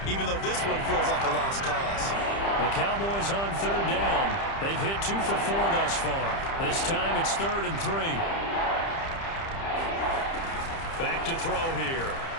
even though this one feels like a lost cause. The Cowboys on third down. They've hit 2 for 4 thus far. This time it's 3rd and 3. Back to throw here.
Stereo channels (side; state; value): right; late; 30 ms